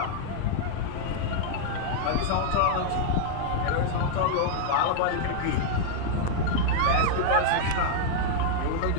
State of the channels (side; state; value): both; different; correlation -0.01